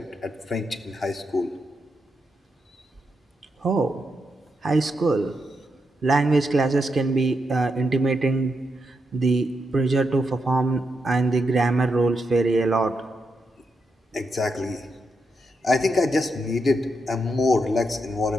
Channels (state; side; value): normal; both; correlation 0.83